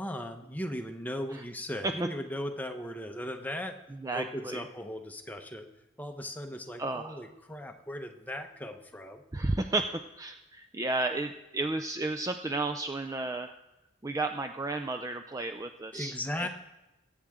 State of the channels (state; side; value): normal; both; correlation 0.53